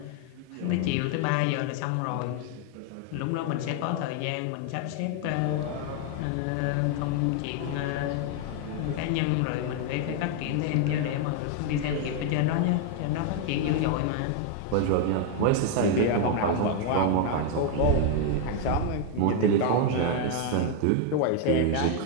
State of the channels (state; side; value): different; both; correlation 0.00